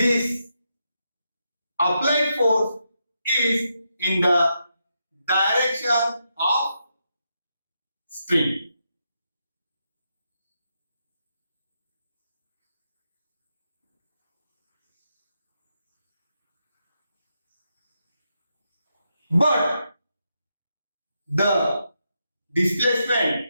applied force is in the direction of string. But the displacement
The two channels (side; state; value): both; inverted; correlation -0.83